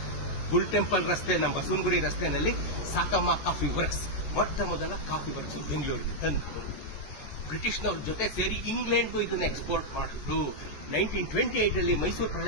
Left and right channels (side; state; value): right; late; 14 ms